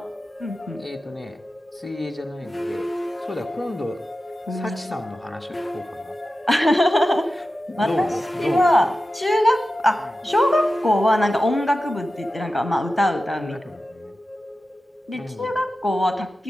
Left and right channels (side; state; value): both; normal; correlation 0.93